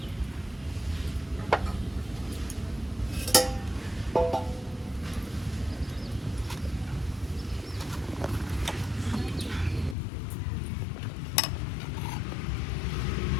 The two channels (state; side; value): drops out; right; at 10.0 s